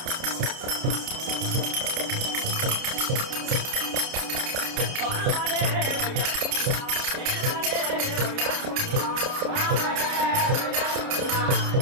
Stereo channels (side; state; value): left; late; 29 ms